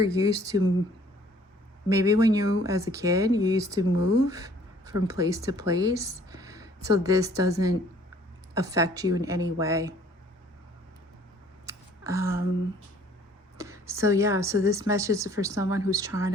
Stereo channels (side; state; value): both; normal; correlation 0.57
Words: used to, maybe when you, as a kid, you used to move from place to place. So this doesn't affect you in any way. So yeah, so this message is for someone who's trying